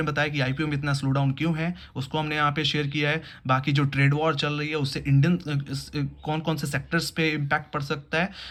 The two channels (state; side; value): identical; both; correlation 1.00